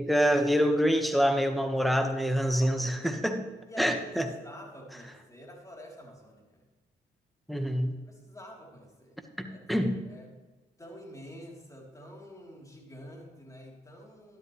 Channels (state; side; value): normal; both; correlation 0.90